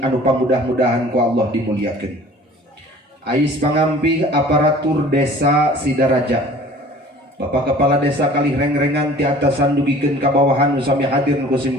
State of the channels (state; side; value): normal; both; correlation 0.47